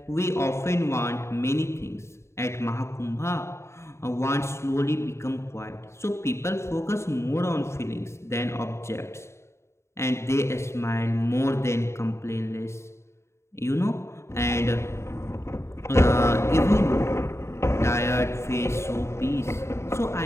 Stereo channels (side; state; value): right; late; 0.13 ms